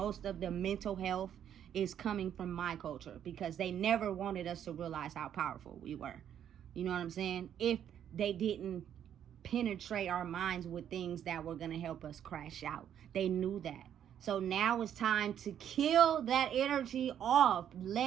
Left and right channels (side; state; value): left; quieter; 9.7 dB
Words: of the mental health is coming from my culture, because they never wanted us to realize how powerful we were. You know what I'm saying? If they didn't penetrate our minds with things that were going to help us crash out. They knew that. So now it's time to kill that energy off.